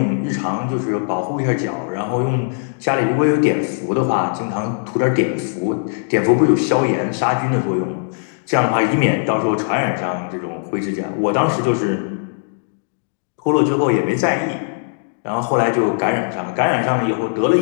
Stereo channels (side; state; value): right; silent; digital silence